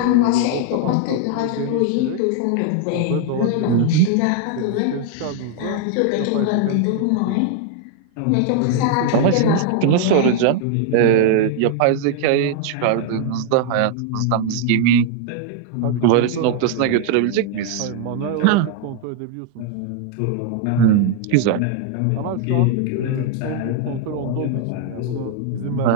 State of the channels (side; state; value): both; different; correlation 0.00